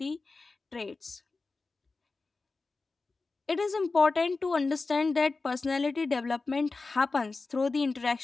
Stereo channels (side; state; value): right; quieter; 3.8 dB